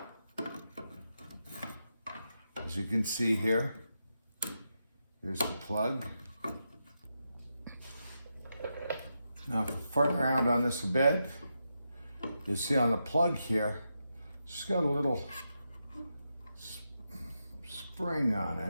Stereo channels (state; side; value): inverted; both; correlation -0.86